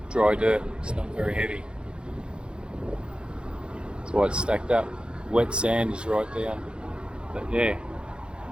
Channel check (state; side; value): late; left; 0.053 ms